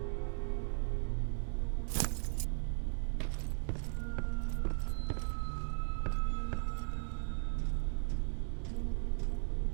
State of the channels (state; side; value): silent; left; digital silence